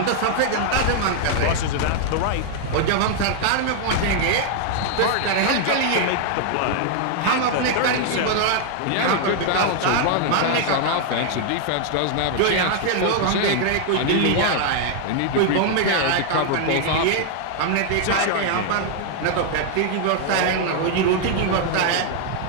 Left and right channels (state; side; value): different; both; correlation 0.00